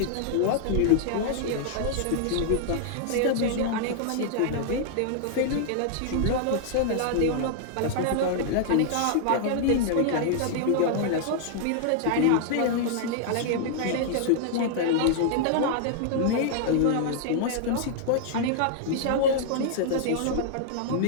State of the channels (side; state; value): both; different; correlation -0.01